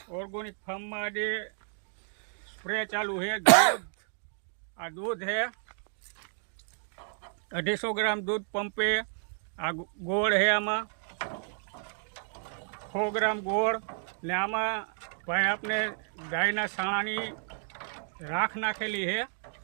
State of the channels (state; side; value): silent; left; 57 dB below the other